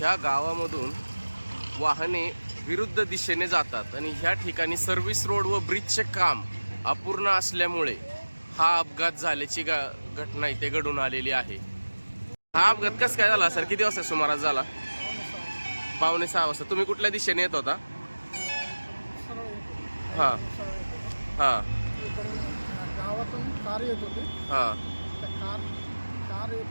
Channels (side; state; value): both; inverted; correlation -1.00